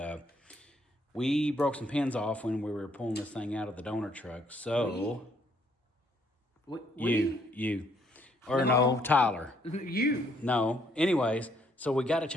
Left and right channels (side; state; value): both; normal; correlation 0.68